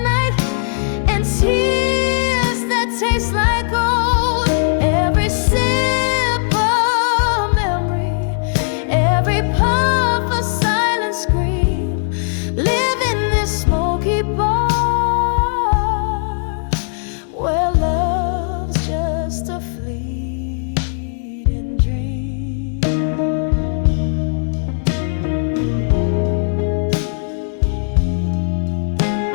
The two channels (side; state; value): right; silent; digital silence